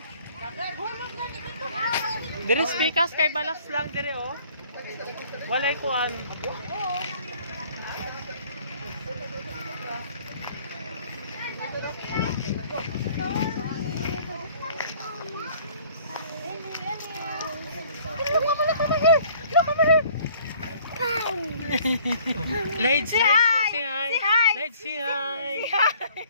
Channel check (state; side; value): inverted; both; correlation -0.55